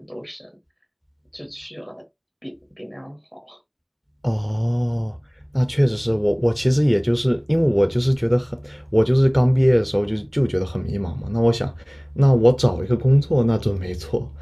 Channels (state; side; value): identical; both; correlation 1.00